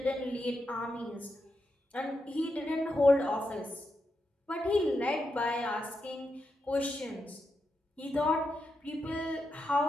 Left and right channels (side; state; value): both; normal; correlation 0.85